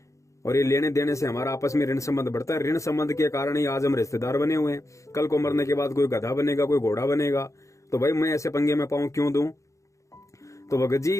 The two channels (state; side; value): late; right; 0.15 ms